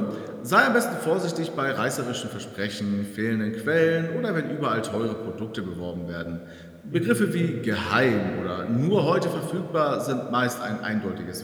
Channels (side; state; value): both; identical; correlation 1.00